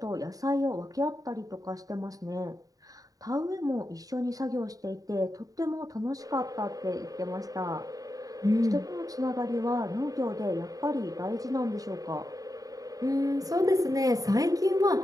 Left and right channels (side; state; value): left; late; 0.17 ms